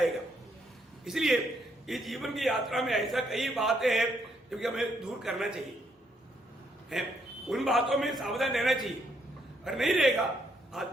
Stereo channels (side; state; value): both; normal; correlation 0.73